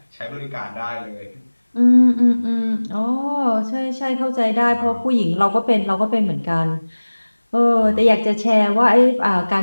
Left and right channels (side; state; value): both; inverted; correlation -1.00